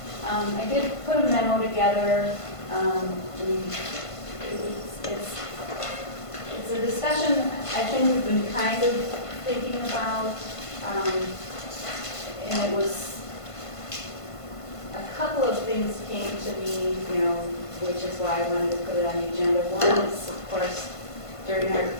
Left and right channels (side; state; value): right; late; 1.5 ms